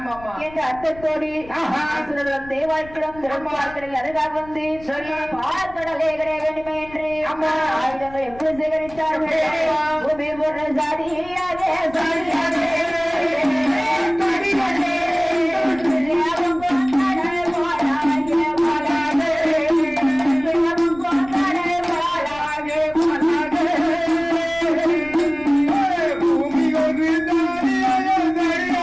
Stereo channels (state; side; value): noise; left; rumble, 20 dB below the sound